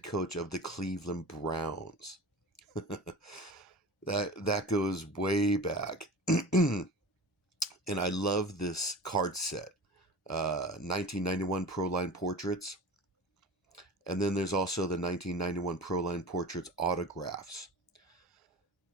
coach of the Cleveland Browns. that goes way back. And I love this card set. 1991 Proline portraits. And then there's also the 1991 Proline portraits autographs.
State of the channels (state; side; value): normal; both; correlation 0.35